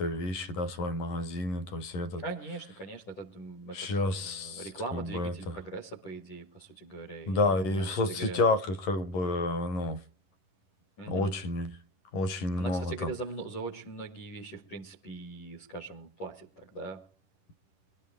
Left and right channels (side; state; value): right; late; 11 ms